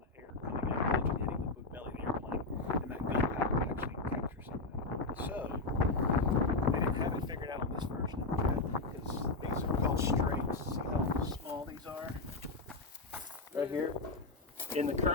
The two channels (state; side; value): quieter; right; 3.4 dB